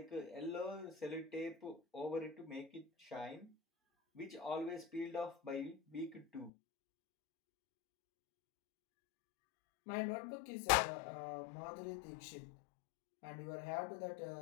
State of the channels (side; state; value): right; drops out; at 6.5 s